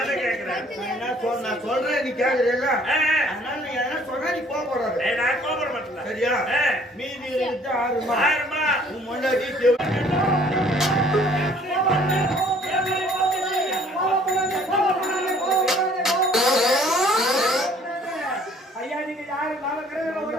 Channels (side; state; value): both; normal; correlation 0.57